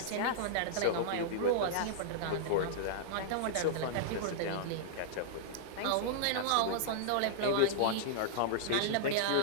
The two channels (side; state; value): both; different; correlation -0.02